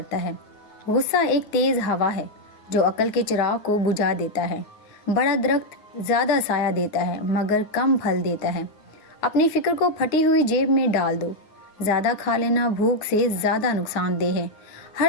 ہے۔ غصہ ایک تیز ہوا ہے جو عقل کے چراغ کو بجھا دیتا ہے۔ بڑا درخت زیادہ سایہ دیتا ہے مگر کم پھل دیتا ہے۔ اپنی فکر کو پھٹی ہوئی جیب میں ڈال دو۔ زیادہ کھا لینا بھوک سے زیادہ نقصان دہ ہے۔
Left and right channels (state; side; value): late; right; 9.5 ms